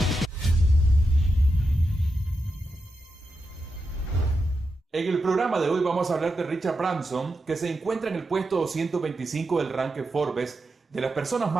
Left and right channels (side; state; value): both; normal; correlation 0.87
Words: el programa de hoy vamos a hablar de Richard Branson, que se encuentra en el puesto 225 del ranking Forbes de las personas